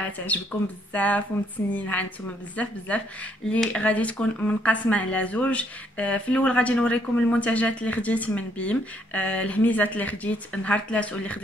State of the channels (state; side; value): normal; both; correlation 0.69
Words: بزاف ومتسنينها نتوما بزاف اللي غادي تكون منقسمه على زوج. في الاول غادي نوريكم المنتجات اللي خديت من بيم، الهميزات اللي خديت نهار 3 واللي